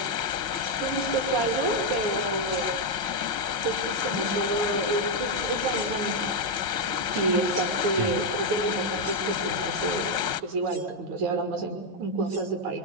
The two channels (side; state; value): left; late; 5.5 ms